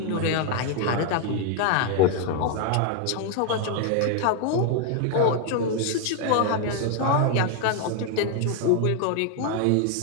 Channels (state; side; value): different; both; correlation 0.01